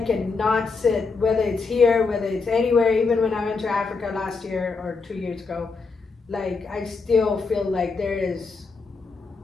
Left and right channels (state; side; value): quieter; right; 4.4 dB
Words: cannot sit, whether it's here, whether it's anywhere. Even when I went to Africa last year or 2 years ago, like I still feel like there is